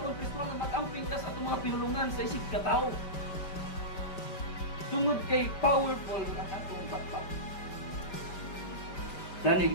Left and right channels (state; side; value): late; right; 5.2 ms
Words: Kristo nga mag-amping ka sa atong mga pinulungan sa isig ka tao. Tungod kay powerful ang atong back.